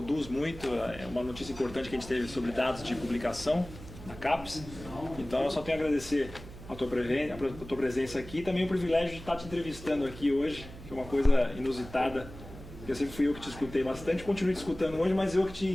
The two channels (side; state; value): right; noise; hum, 15 dB below the sound